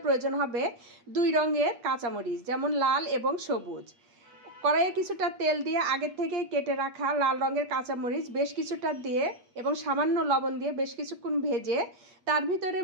প্রয়োজন হবে 2 রঙের কাঁচামরিচ, যেমন লাল এবং সবুজ। কড়াইয়ে কিছুটা তেল দিয়ে আগের থেকে কেটে রাখা লাল রঙের কাঁচামরিচ বেশ কিছুটা দিয়ে এবং সামান্য লবণ দিয়ে বেশ কিছুক্ষণ ভেজে তার ভিতরে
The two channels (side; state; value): left; late; 8.4 ms